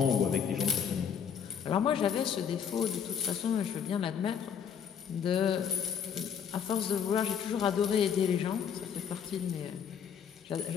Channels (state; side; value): quieter; right; 7.7 dB